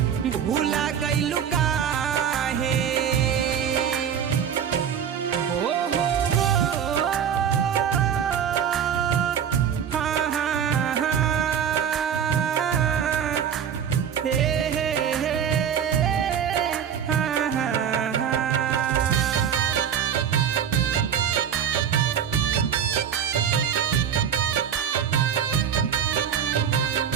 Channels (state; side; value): quieter; left; 8.3 dB